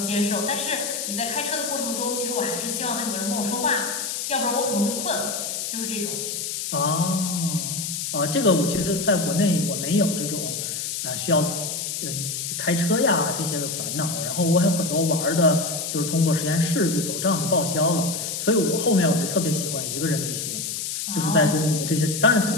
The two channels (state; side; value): noise; left; hiss, 4 dB below the sound